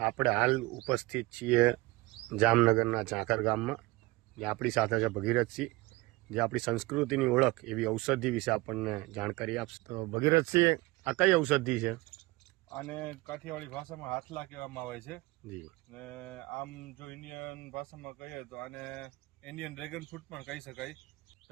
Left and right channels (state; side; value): quieter; left; 21.5 dB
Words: આપણે હાલ ઉપસ્થિત છીએ જામનગરના ઝાંખર ગામમાં, જે આપણી સાથે છે ભગીરથસિંહ, જે આપણી સંસ્કૃતિની ઓળખ એવી ઔષધિ વિશે આપણને જાણકારી આપશે. તો ભગીરથસિંહ, આ કઈ ઔષધિ છે? આને કાઠિયાવાડી ભાષામાં હાથલા કહેવામાં આવે છે. જી. ને આમ જો ઇન્ડિયન ભાષામાં કહીએ તો આને ઇન્ડિયન ડ્રેગન ફ્રૂટ પણ કહી શકાય.